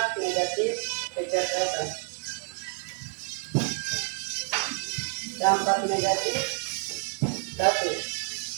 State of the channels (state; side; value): quieter; left; 39.3 dB